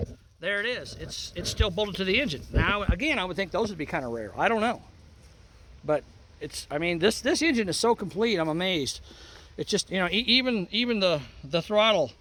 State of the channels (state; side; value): identical; both; correlation 1.00